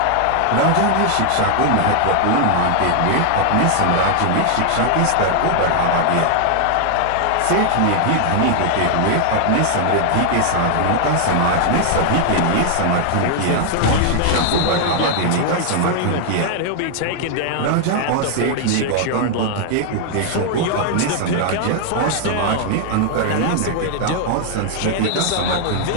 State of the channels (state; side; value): different; both; correlation 0.00